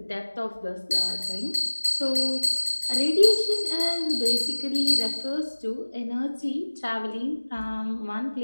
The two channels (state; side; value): inverted; both; correlation -1.00